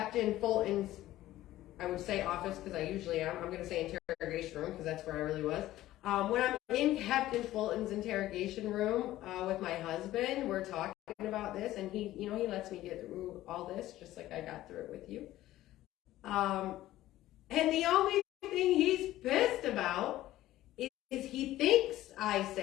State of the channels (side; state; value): right; quieter; 15.0 dB